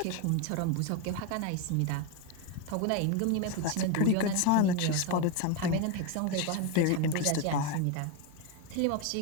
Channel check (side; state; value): both; different; correlation 0.02